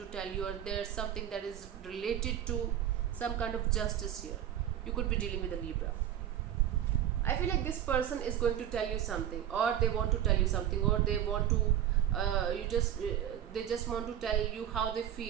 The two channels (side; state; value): left; quieter; 11.0 dB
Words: tell you, or there's something that is related to some kind of justice here. You could be dealing with a Libra. I feel like this person is going to tell you something, or they want to tell you something, or they want to they just want to tell you how they